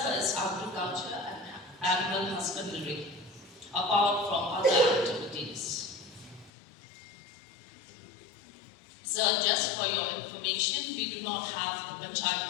is agriculture and animal husbandry, apart from other activities. Sir, just for your information, we do not have the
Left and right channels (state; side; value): drops out; right; at 6.5 s